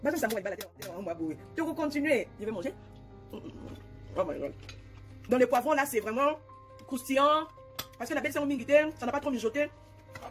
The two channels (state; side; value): identical; both; correlation 1.00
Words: Basum samu walibala te, on va boue. Tu veux continuer, je vais manger. Oh my god. Dans les poivrons là, c'est vraiment croustillant, parce que la belle c'est en mingité, ça n'a pas trop mijoté.